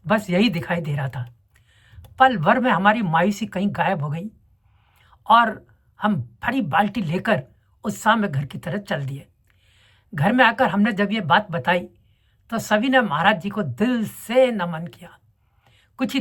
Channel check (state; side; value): identical; both; correlation 1.00